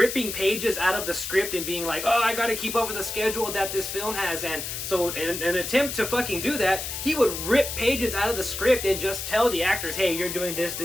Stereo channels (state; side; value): noise; left; hiss, 5 dB below the sound